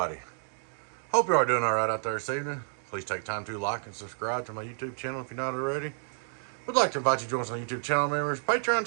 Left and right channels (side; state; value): left; silent; digital silence